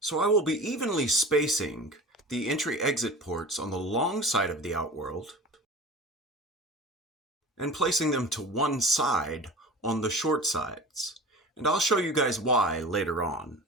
I will be evenly spacing the entry-exit ports on the long side of the outworld and placing them to one side on the short sides. And I'll show you guys why later on.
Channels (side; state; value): both; normal; correlation 0.36